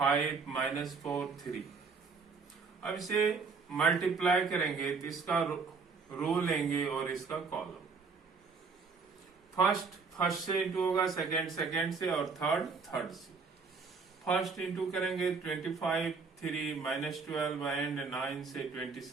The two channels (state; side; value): quieter; left; 4.9 dB